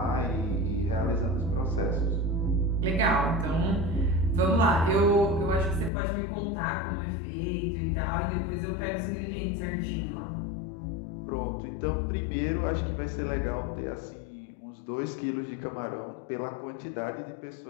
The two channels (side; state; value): right; drops out; at 5.9 s